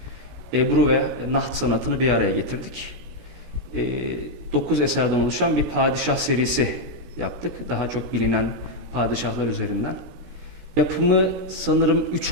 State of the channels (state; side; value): late; left; 16 ms